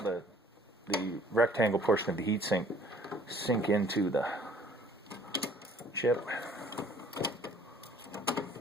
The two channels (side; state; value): both; normal; correlation 0.56